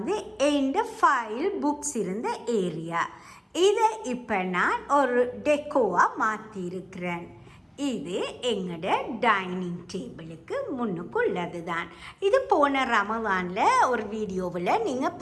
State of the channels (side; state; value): both; identical; correlation 1.00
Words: எந்த ஃபைல் புக்ஸ் இருந்த ஏரியா. இதை இப்போ நான் ஒரு டெக்கோவாக மாற்றிருக்கிறேன். இது எங்களோட டைனிங் டேபிளுக்கு முன்னுக்குள்ளது தான். இது போன ரமலானில் ஒரு வீடியோவில் நீங்கள்